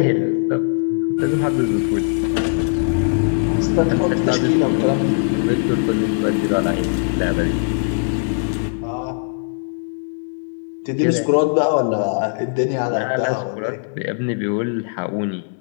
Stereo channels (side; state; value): right; silent; digital silence